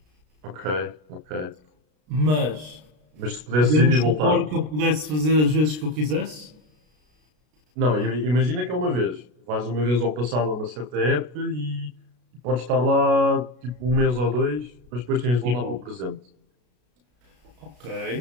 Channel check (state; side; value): late; left; 33 ms